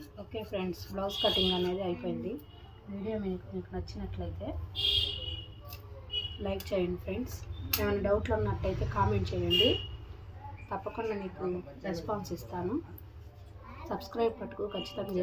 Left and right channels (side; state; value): both; identical; correlation 1.00